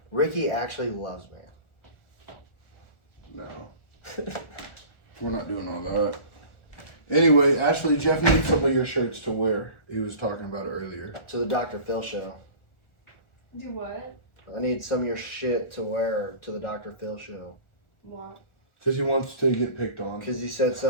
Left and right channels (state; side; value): late; right; 1.4 ms